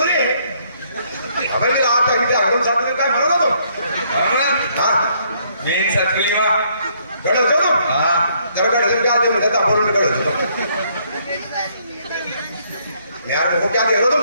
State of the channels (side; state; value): both; inverted; correlation -0.68